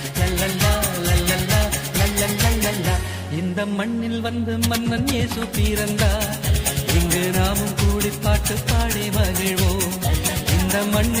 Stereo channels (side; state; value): both; identical; correlation 1.00